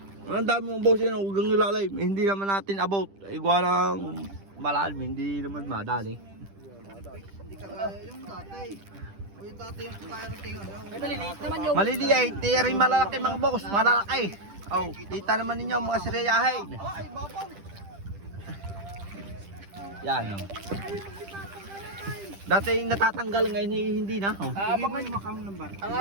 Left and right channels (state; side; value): late; left; 10 ms